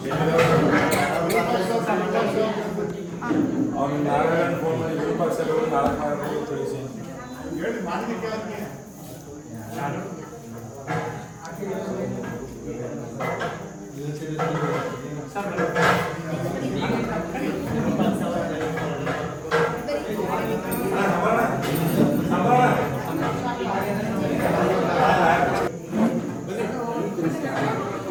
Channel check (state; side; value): identical; both; correlation 1.00